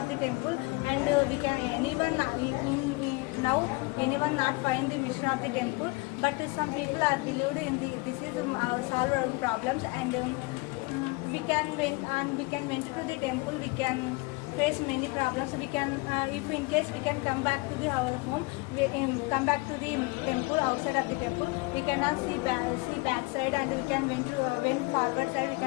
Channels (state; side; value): quieter; right; 26.2 dB